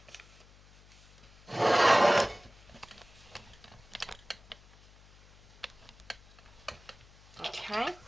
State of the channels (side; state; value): left; noise; hum, 24 dB below the sound